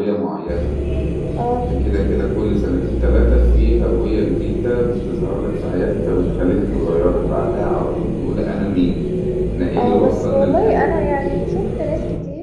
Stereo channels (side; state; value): both; identical; correlation 1.00